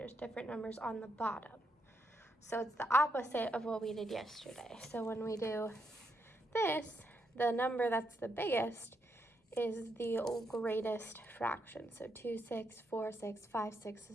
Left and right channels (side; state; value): both; normal; correlation 0.79